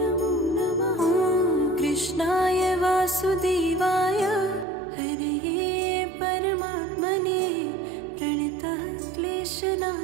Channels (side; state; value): left; drops out; at 4.7 s